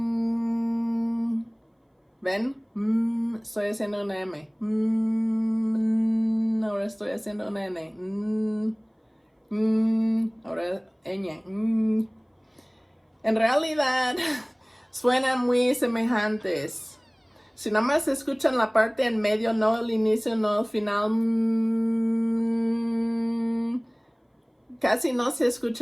¿Ven? Estoy haciendo una M. Ahora estoy haciendo una N. Ahora ñ. En realidad suenan muy semejantes. Si nada más escuchan la parte en medio, no el inicio, no el final, casi no se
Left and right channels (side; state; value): both; identical; correlation 1.00